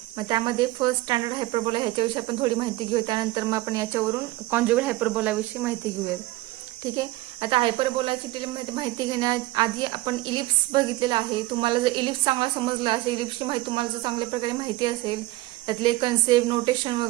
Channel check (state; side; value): quieter; left; 18.8 dB